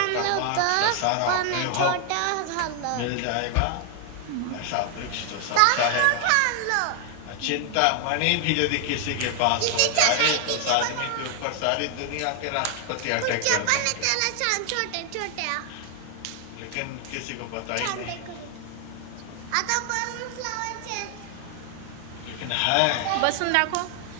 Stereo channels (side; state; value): both; different; correlation 0.00